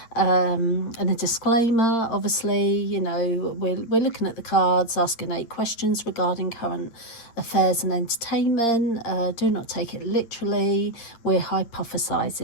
and a disclaimer. Obviously, you know, we're looking at the cards, asking 8 questions regarding current affairs and entertainment. Do not take it literally. We're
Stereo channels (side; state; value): right; late; 8.9 ms